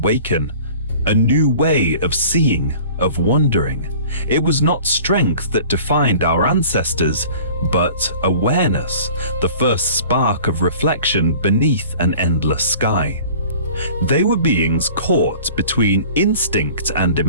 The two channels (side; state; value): both; inverted; correlation -0.45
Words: A new way of seeing, of wondering. It was not strength that defined our ancestors, but awareness, the first spark of reflection beneath an endless sky. They were beings caught between instinct and